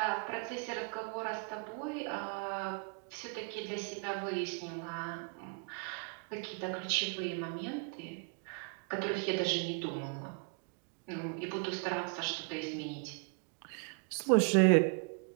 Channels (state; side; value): quieter; left; 37.0 dB